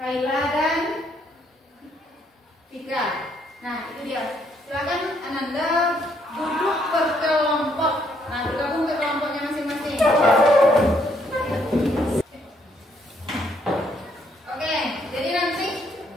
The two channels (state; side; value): normal; both; correlation 0.70